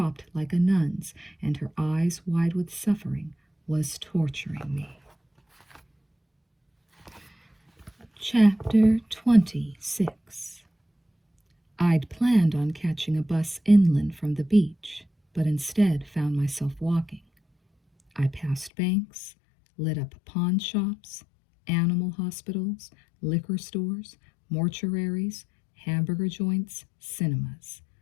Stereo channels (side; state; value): right; drops out; at 18.7 s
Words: like a nun's and her eyes wide with suffering, was torturing me. Chapter 26. I'd planned on catching a bus inland from the beach, but instead found myself walking. I passed banks, lit up pawn shops, animal hospitals, liquor stores, mortuaries, hamburger joints, cinemas.